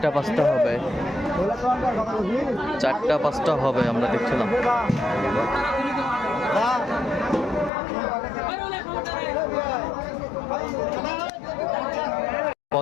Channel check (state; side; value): drops out; right; at 7.7 s